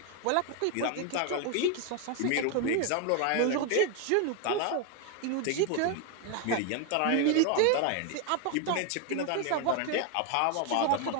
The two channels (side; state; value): both; different; correlation 0.01